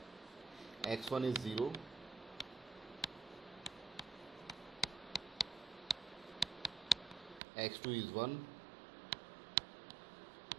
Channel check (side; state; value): left; drops out; at 7.4 s